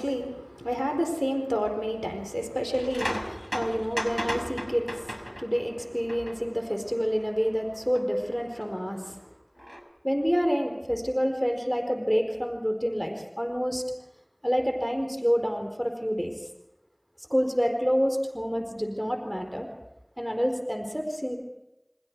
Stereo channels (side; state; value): both; identical; correlation 1.00